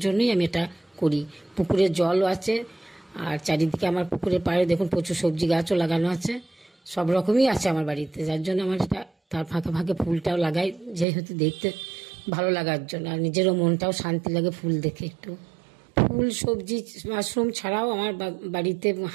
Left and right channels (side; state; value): left; drops out; at 11.1 s